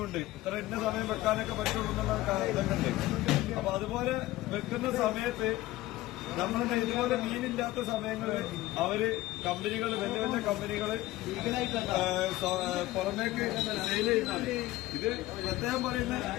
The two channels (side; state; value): right; quieter; 17.2 dB